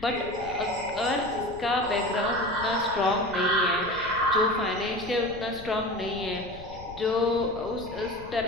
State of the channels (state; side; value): noise; left; rumble, 16 dB below the sound